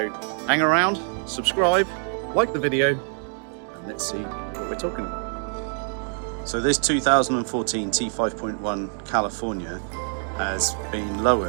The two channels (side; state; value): left; silent; 57 dB below the other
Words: hang around, subscribe, like the video, and let's see what we're talking about. So this 2014 T5.1 California has been